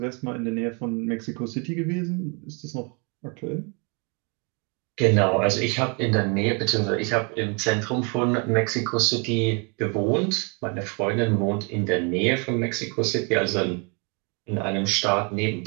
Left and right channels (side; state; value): left; quieter; 34.0 dB